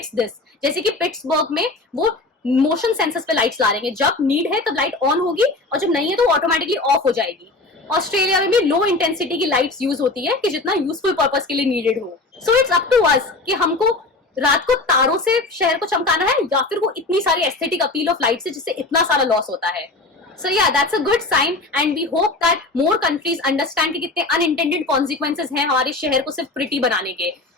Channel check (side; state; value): right; quieter; 3.2 dB